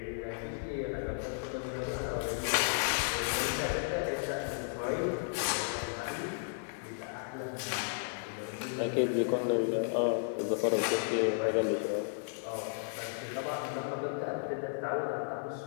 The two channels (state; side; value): silent; right; 55 dB below the other